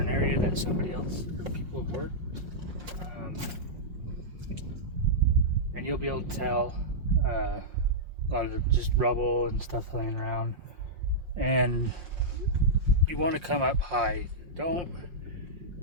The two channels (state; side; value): late; left; 5.6 ms